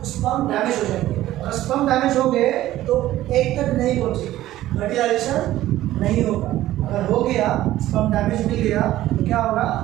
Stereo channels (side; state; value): left; quieter; 14.6 dB